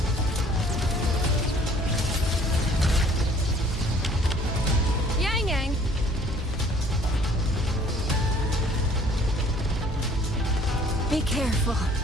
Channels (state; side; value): normal; both; correlation 0.56